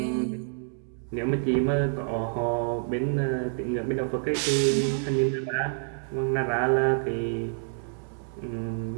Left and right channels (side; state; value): left; silent; 60 dB below the other